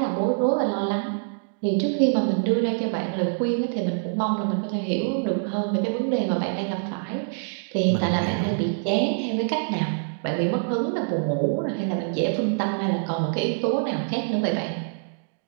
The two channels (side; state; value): left; silent; digital silence